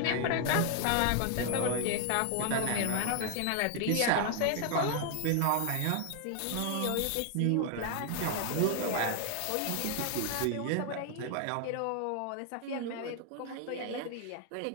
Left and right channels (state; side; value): different; both; correlation 0.00